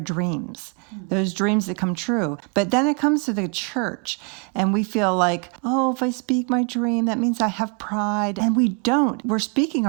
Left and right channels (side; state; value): left; quieter; 33.0 dB